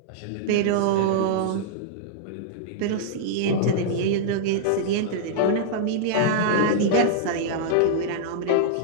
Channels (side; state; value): both; different; correlation -0.02